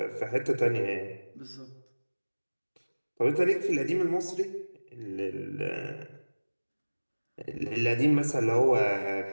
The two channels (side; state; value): both; inverted; correlation -1.00